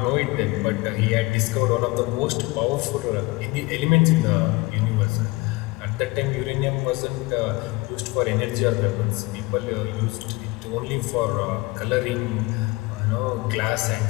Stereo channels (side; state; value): right; quieter; 23.5 dB